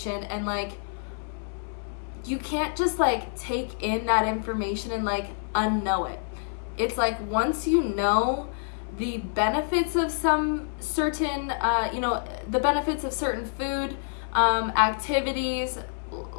and like, you can't just like take in that information and like unknow it. It's like, once you know the benefits of some certain, the benefits of certain food, activities,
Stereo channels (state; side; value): silent; right; 60 dB below the other